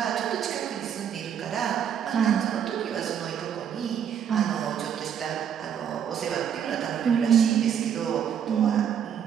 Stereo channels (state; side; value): quieter; left; 8.6 dB